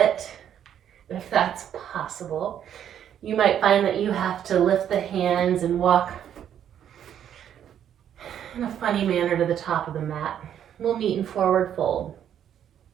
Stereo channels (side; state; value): left; quieter; 9.7 dB